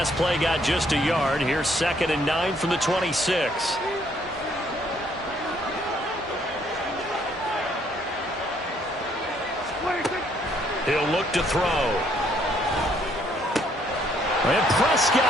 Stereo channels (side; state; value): both; normal; correlation 0.67